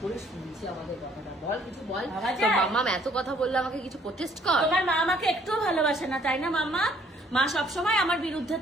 করে শুনছি আমাদের কথাটা, বল কিছু বল। ভাবা তো যায়? মাম্মা এত কথা বললে আমাকে কিছু প্রটেস্ট কর। তোমার মা আমাকে একটুও ভালোবাসে না তাই না মাম্মা? মা সবসময় আমার বিরুদ্ধে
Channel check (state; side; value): normal; both; correlation 0.62